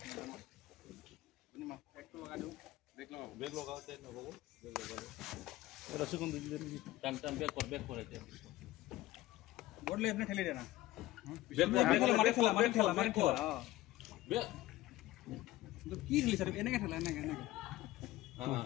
একটু লাগা দাও ব্রেক লাগাতে না বাবু ব্রেক লাগাও রসগোন দিলে টান টান ব্রেক করেছে বললে আপনি ঠেলে দেনা ব্রেক মারে খেলা ব্রেক তো কি দিলি স্যার এনেকে ঠেলা এনেকে হ্যাঁ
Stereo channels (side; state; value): right; quieter; 16.4 dB